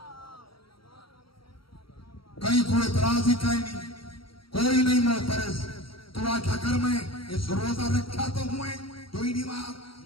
کہیں کوئی اعتراض ہی کہیں نہیں، کوئی نہیں معترض. تو آکھا کر میں اس روزہ رکھا تو ہوئے جو ہی دیوار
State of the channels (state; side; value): late; right; 0.74 ms